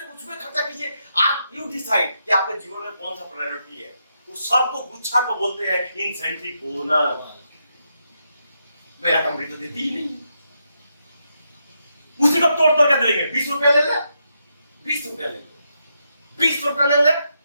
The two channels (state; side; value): inverted; both; correlation -0.82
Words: खर्चा कीजिए। आप यू डिसाइड कि आपके जीवन में कौन सा प्रायोरिटी है। तो सबको गुच्छा को बोलते हैं इंसेंटिव बोनस। मेरा कंपनी तो देती ही नहीं है, उसी को तोड़ के देंगे। 20 रुपया ले ले, 20 रुपया ले ले, 20 रुपया ले ले,